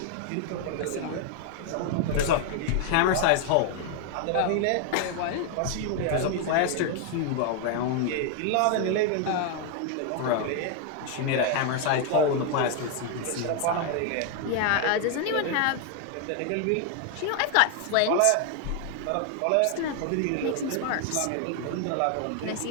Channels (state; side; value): different; both; correlation 0.00